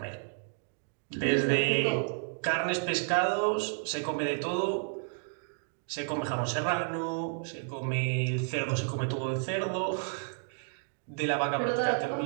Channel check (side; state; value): left; silent; 57 dB below the other